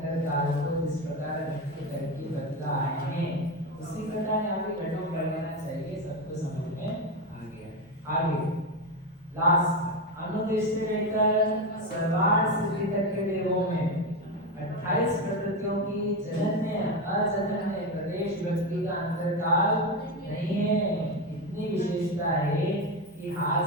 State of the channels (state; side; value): normal; both; correlation 0.14